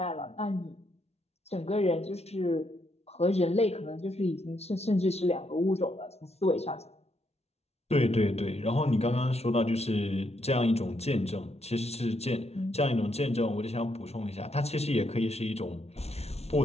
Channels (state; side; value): late; right; 0.31 ms